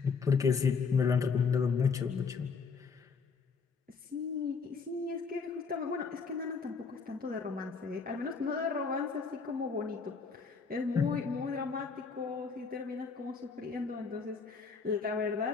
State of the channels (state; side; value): quieter; right; 5.2 dB